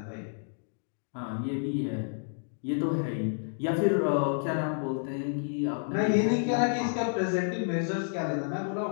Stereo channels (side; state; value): right; silent; digital silence